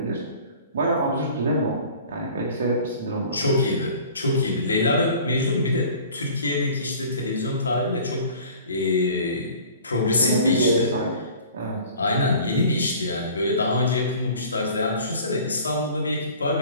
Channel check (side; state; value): both; inverted; correlation -0.46